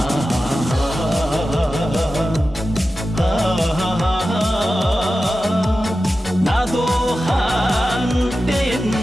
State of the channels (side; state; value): both; normal; correlation 0.93